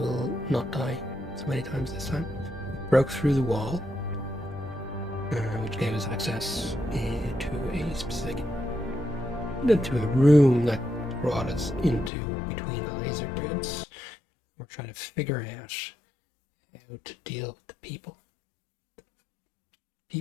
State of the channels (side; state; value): right; drops out; at 12.1 s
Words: not die so many times this time. Broke through the wall, which gave us access to a room that brought us into between the laser grids. We're trying to figure out how to deal with the people.